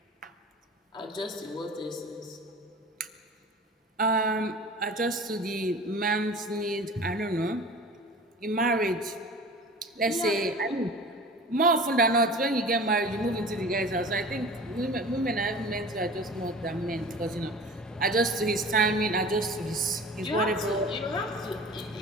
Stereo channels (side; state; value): both; normal; correlation 0.39